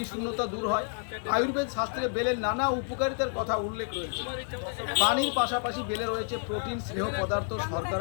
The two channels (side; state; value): right; silent; 58 dB below the other